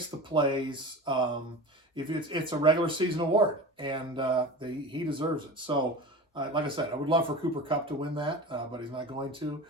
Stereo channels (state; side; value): normal; both; correlation 0.32